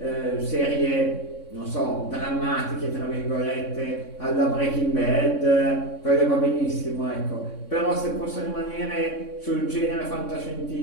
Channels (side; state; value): right; late; 3.6 ms